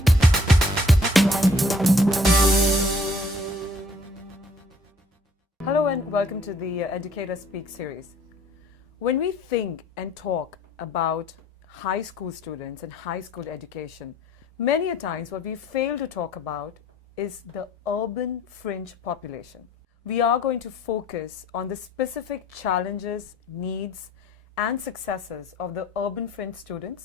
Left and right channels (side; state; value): both; normal; correlation 0.57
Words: and welcome to the Educator Speak series. When we think and talk about high school students and high school education, many a times what we fail to talk about is the urban fringe population. We are going to focus on the specific challenges, needs, and successes of the urban fringe